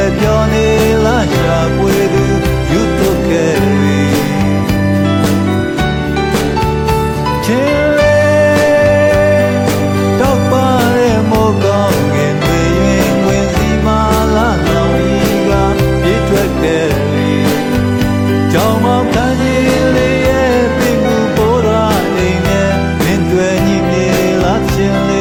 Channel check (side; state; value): both; identical; correlation 1.00